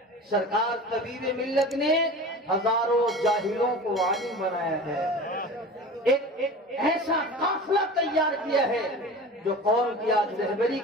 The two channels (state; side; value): normal; both; correlation 0.36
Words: سرکار طبیب ملت نے ہزاروں جاہلوں کو عالم بنایا ہے، ایک ایسا قافلہ تیار کیا ہے جو قوم کی آج رہبری